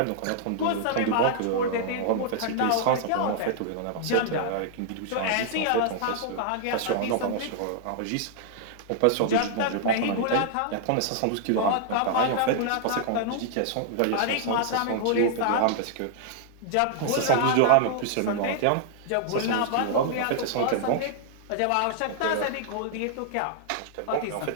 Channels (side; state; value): both; different; correlation -0.01